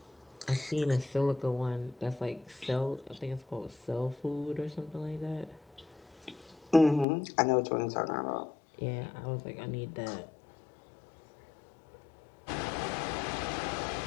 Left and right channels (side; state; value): right; drops out; at 7.1 s